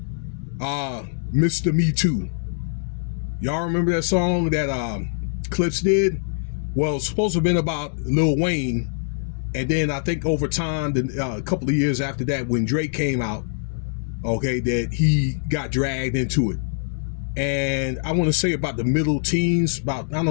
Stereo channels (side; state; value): right; silent; digital silence